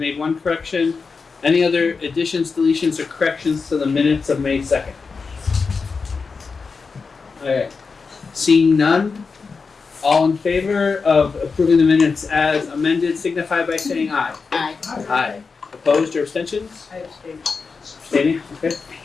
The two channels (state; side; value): quieter; right; 4.8 dB